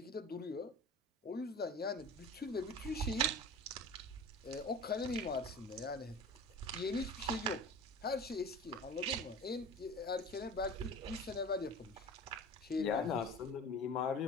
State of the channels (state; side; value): normal; both; correlation 0.37